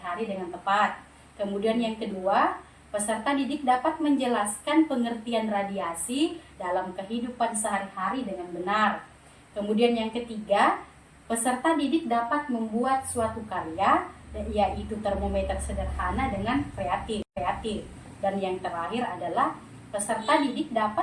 dengan tepat. Kemudian yang kedua, peserta didik dapat menjelaskan pengertian radiasi dalam kehidupan sehari-hari dengan benar. Kemudian yang ketiga, peserta didik dapat membuat suatu karya yaitu termometer sederhana dengan kreatif. Dan yang terakhir adalah peserta didik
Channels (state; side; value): identical; both; correlation 1.00